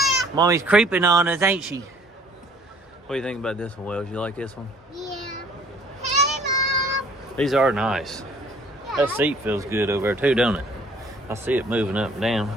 Mommy's creeping on us, ain't she? What do you think about this one, Wells? You like this one? Yeah. Hey, Mom. These are nice. That seat feels good over there too, don't it? I see it moving up and down.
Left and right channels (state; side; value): normal; both; correlation 0.56